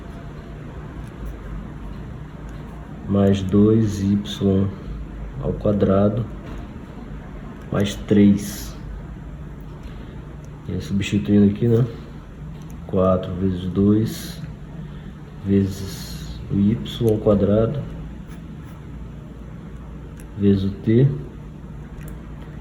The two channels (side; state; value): both; identical; correlation 1.00